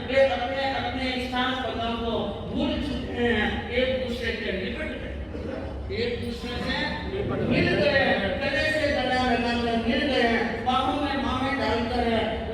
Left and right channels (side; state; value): both; identical; correlation 1.00